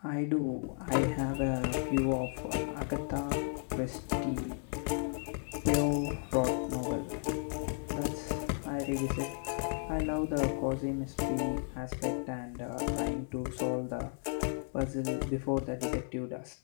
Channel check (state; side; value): silent; right; 55 dB below the other